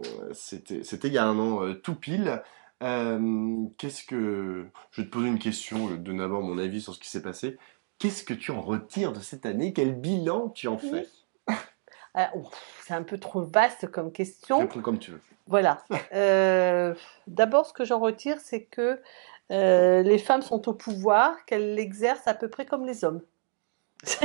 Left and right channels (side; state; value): left; silent; digital silence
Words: C'était il y a 1 an tout pile. Je vais te poser une question, donner d'abord mon avis sur ce qui s'est passé. Qu'est-ce que tu en retires de cette année? Quel bilan tu en fais? C'est un peu trop vaste comme question. Réponds comme tu veux. Voilà. D'abord, ce que j'en retire, c'est que les femmes sont au pouvoir, qu'elles l'exercent à peu près comme les hommes.